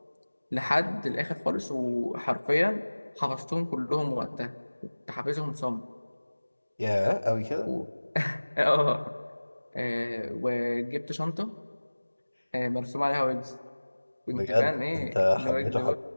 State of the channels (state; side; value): inverted; both; correlation -1.00